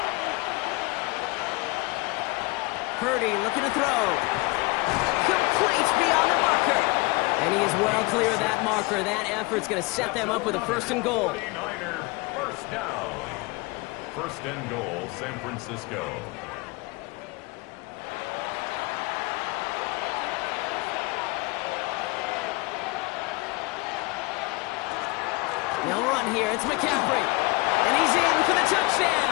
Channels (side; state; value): right; quieter; 25.0 dB